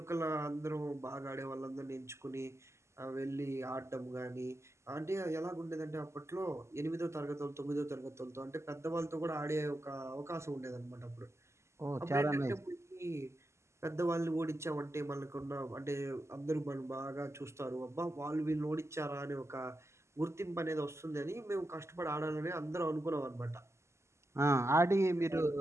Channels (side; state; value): left; late; 0.13 ms